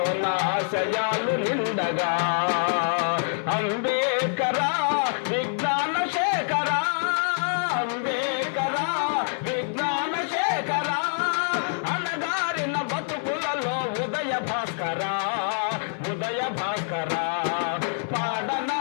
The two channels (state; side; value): silent; right; digital silence